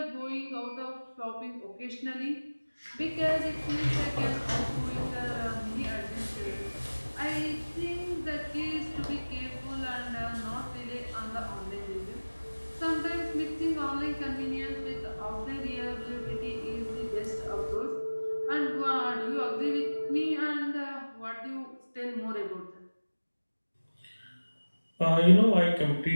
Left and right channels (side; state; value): both; inverted; correlation -1.00